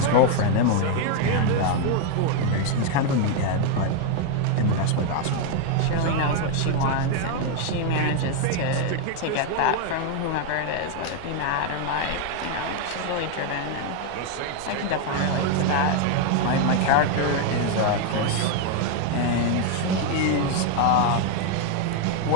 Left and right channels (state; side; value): different; both; correlation 0.01